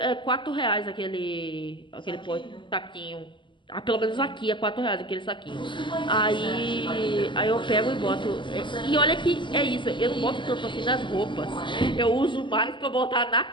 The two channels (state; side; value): late; right; 0.24 ms